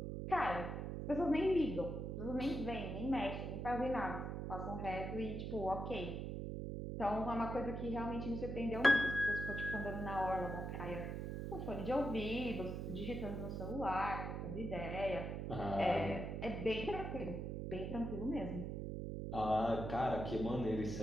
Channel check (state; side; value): noise; right; hum, 4 dB below the sound